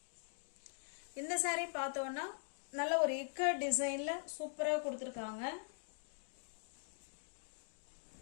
இந்த சாரி பார்த்தோம்னா நல்ல ஒரு இக்கட் டிசைன்ல சூப்பரா கொடுத்துருக்காங்க.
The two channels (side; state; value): right; silent; digital silence